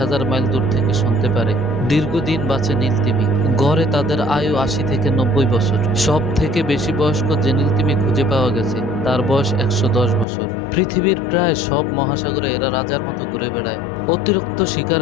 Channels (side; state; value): right; drops out; at 10.2 s